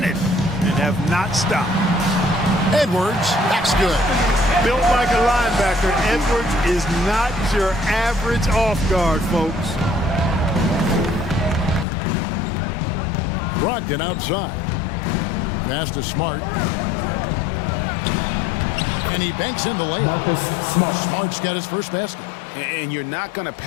and have not stopped. Edwards, that's good. Built like a linebacker, Edwards is not your average off guard, folks. Brogdon outside. Pass to Smart. And he banks in the layup. Smart's got his first basket. And you're not going to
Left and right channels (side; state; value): right; drops out; at 11.9 s